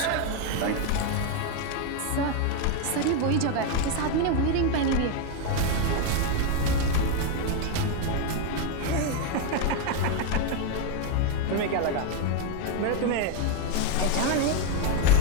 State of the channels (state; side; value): different; both; correlation 0.01